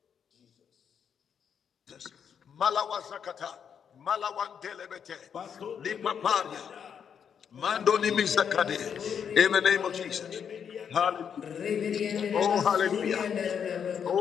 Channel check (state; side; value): quieter; right; 7.6 dB